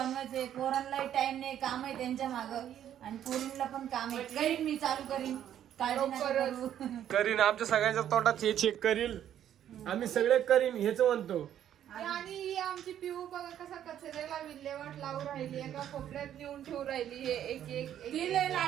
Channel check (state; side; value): quieter; left; 10.6 dB